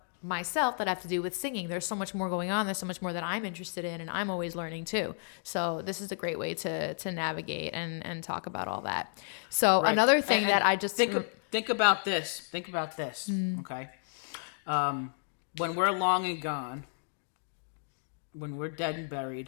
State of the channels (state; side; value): silent; right; digital silence